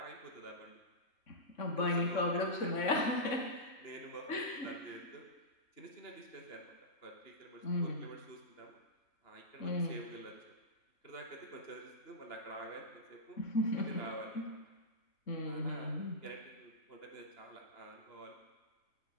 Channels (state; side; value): late; right; 3.5 ms